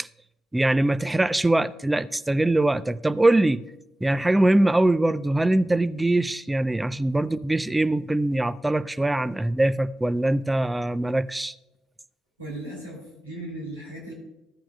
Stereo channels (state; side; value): normal; both; correlation 0.98